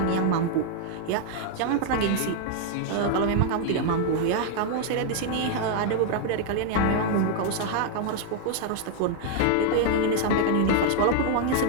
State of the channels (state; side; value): different; both; correlation 0.00